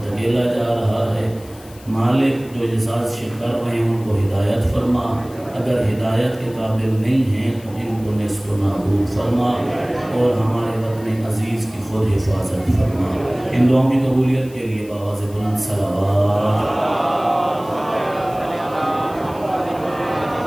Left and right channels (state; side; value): noise; left; hiss, 23 dB below the sound